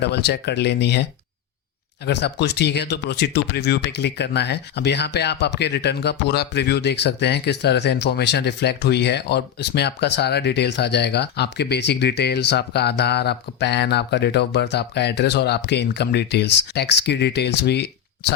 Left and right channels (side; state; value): right; quieter; 9.4 dB